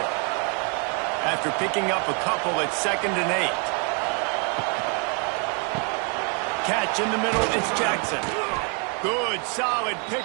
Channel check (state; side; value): quieter; left; 37.6 dB